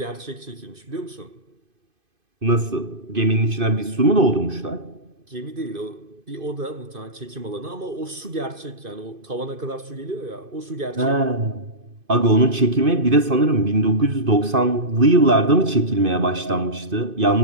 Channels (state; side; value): late; left; 2.5 ms